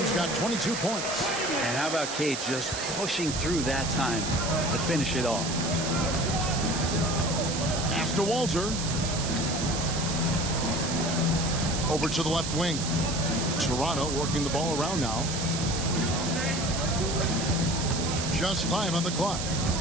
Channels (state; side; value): noise; right; hiss, 5 dB below the sound